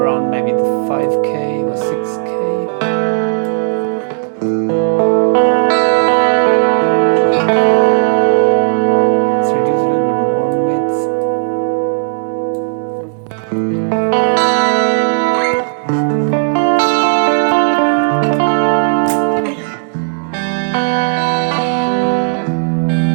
around maybe the 5K or 6K.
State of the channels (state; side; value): silent; left; digital silence